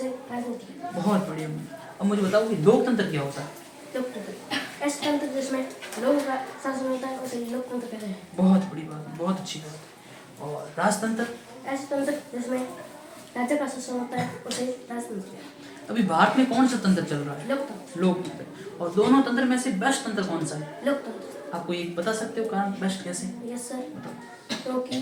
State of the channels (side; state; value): both; identical; correlation 1.00